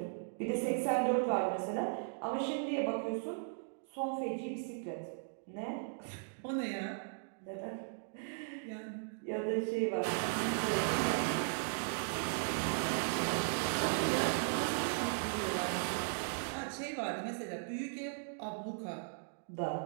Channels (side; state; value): left; silent; digital silence